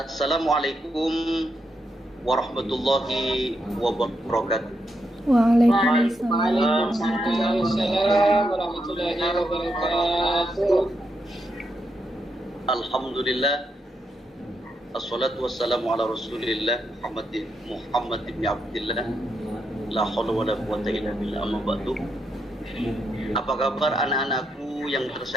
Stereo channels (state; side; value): normal; both; correlation 0.81